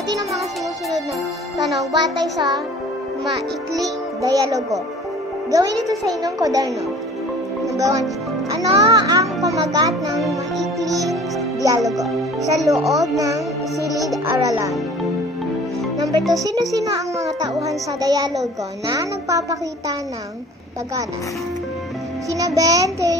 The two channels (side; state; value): both; normal; correlation 0.47